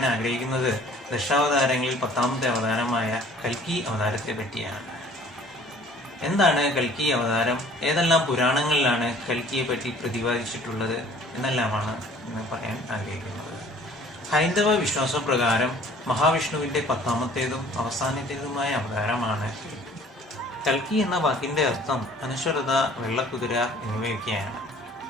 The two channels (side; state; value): both; normal; correlation 0.52